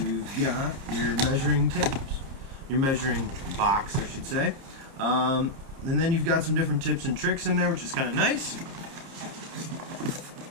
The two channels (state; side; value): late; left; 30 ms